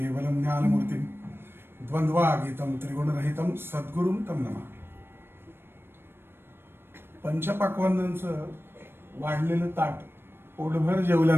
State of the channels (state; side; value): late; left; 0.11 ms